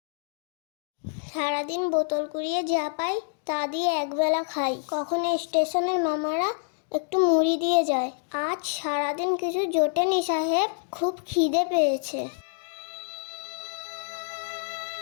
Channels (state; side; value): silent; right; digital silence